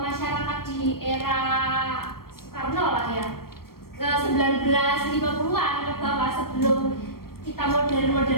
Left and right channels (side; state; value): right; late; 0.94 ms